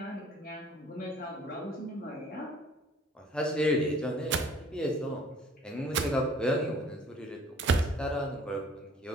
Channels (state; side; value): normal; both; correlation 0.54